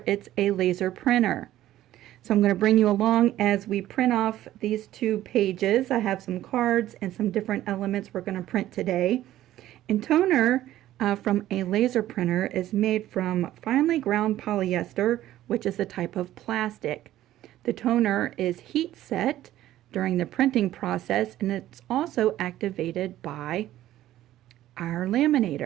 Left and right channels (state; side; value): quieter; left; 13.8 dB